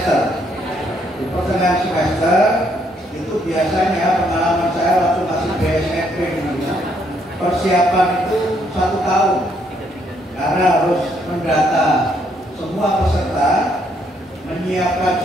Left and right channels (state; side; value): normal; both; correlation 0.71